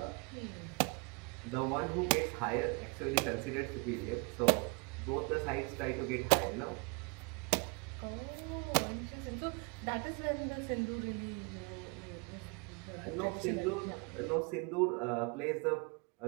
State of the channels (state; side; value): quieter; left; 31.4 dB